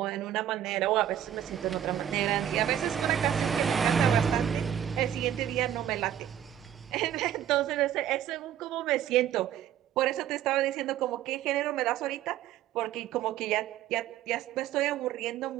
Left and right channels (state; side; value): quieter; left; 10.6 dB